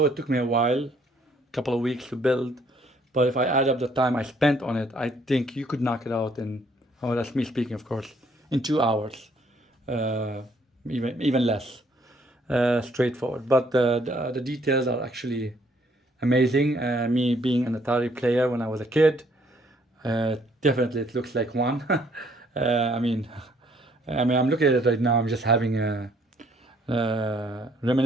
it took me a while, a couple of weeks to build, but if I add up the time I spent on it, I think you could knock it out in, oh, that's me speaking, of course, in 2 hours, even less. Straightforward. But the details are actually amazing. Me being an Atari player when I was a kid, definitely it looks like one. I mean, I'm looking at it right now. I'm just having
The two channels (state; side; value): normal; both; correlation 0.65